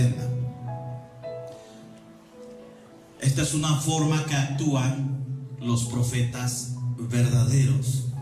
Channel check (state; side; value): identical; both; correlation 1.00